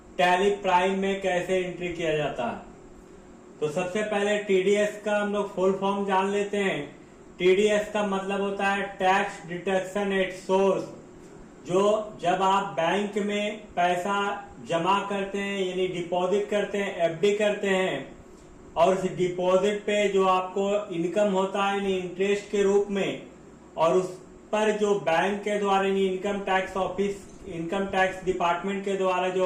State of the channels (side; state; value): both; identical; correlation 1.00